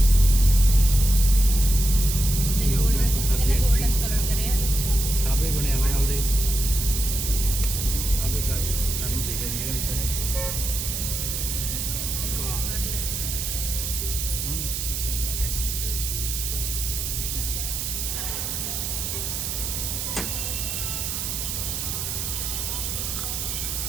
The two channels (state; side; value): noise; right; hiss, 3 dB below the sound